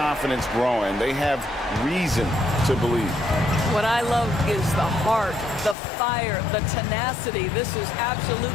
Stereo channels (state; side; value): drops out; right; at 5.8 s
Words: growing. They have reason to believe. What I love is the heart, the fire, the tenacity. This is